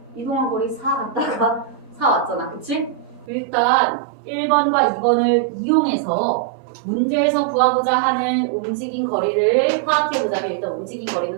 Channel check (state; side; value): drops out; left; at 3.2 s